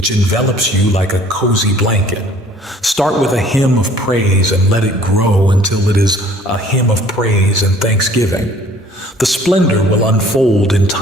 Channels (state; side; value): normal; both; correlation 0.54